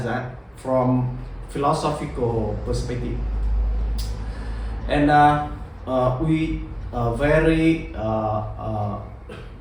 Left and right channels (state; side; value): identical; both; correlation 1.00